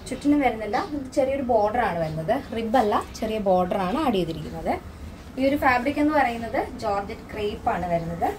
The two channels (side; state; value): both; identical; correlation 1.00